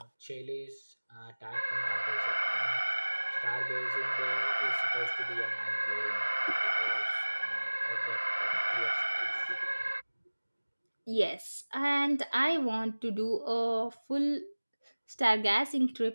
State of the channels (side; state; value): both; inverted; correlation -1.00